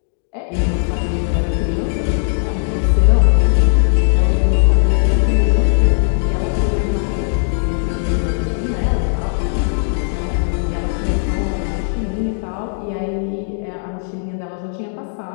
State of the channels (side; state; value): right; silent; 68 dB below the other